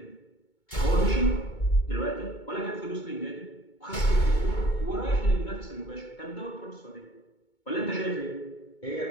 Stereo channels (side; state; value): right; late; 2.2 ms